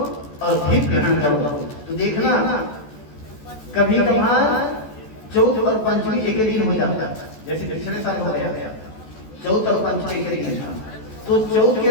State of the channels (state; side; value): late; right; 14 ms